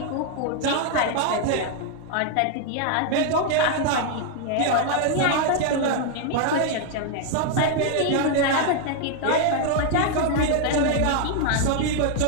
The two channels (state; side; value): different; both; correlation 0.00